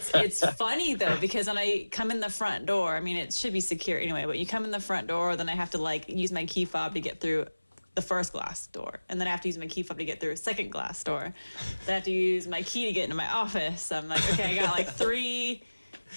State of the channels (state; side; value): inverted; both; correlation -1.00